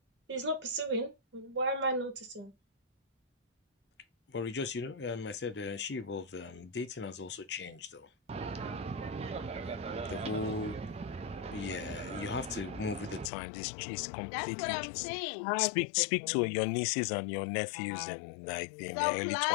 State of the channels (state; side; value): drops out; right; at 13.3 s